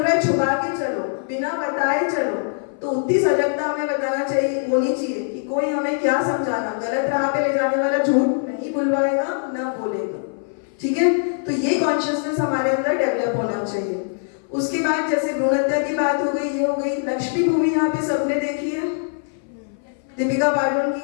है छुपा के चलो, बिना बताए चलो, तो उतनी सजगता हमें बताना चाहिए, होनी चाहिए कि कोई हमें क्या समझाना, गलत राह पे ले जाने वाला झूठ नहीं बुलवाएगा, ना बोलेगा। ठीक है, तो ये कॉन्शियसनेस हमारे अंदर डेवलप होना चाहिए। उसके बाद जैसे भ्रूण हत्या की बात हो गई, ये हो गई। लक्ष्मी मूवी यहाँ पे सबने देखी है, दीपिका पादुकोण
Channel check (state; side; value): silent; right; 59 dB below the other